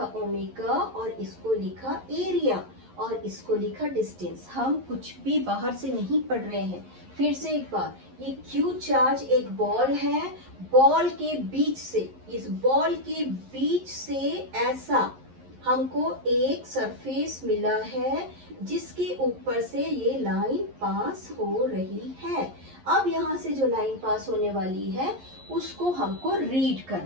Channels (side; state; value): left; late; 11 ms